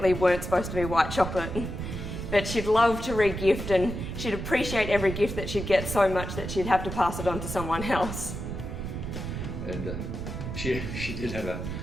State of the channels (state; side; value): noise; right; rumble, 6 dB below the sound